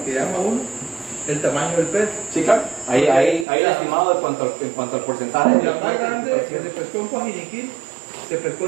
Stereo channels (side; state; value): left; drops out; at 3.5 s